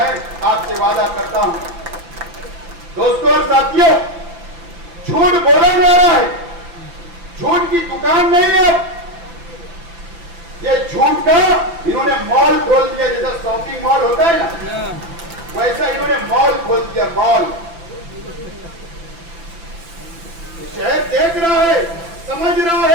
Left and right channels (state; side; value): late; left; 5.9 ms